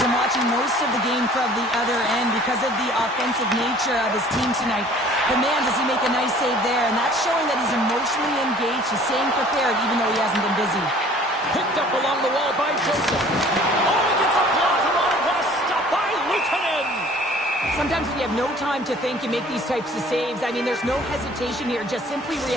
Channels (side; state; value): both; normal; correlation 0.52